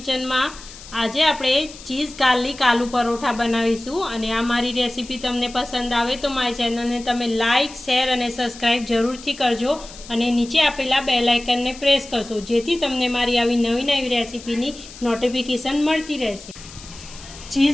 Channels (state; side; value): noise; left; hiss, 17 dB below the sound